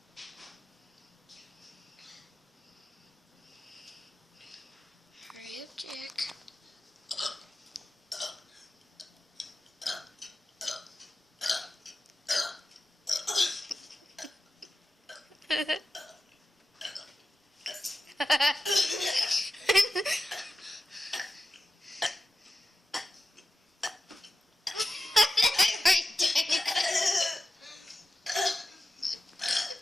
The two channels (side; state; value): both; normal; correlation 0.93